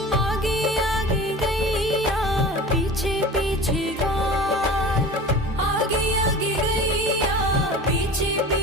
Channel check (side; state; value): both; normal; correlation 0.37